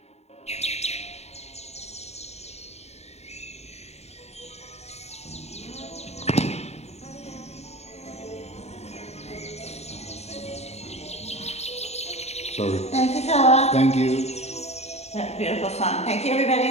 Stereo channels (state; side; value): late; right; 0.31 ms